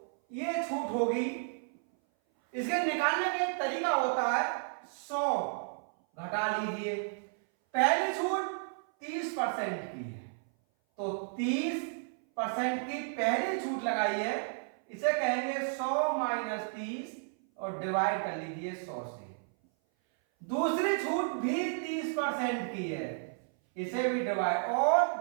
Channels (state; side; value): silent; left; 56 dB below the other